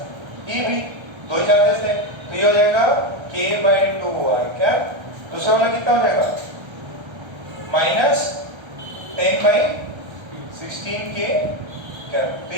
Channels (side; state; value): left; late; 1.3 ms